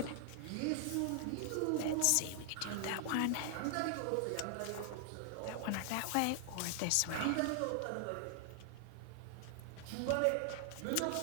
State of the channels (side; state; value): both; different; correlation 0.00